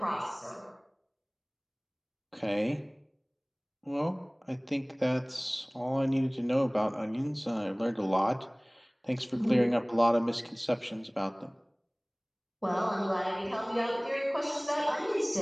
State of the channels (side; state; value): both; identical; correlation 1.00